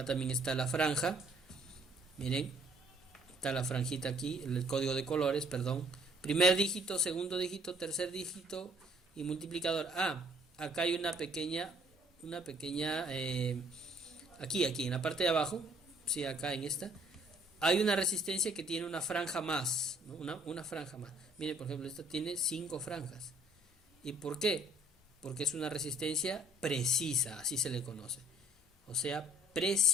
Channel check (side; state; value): both; normal; correlation 0.60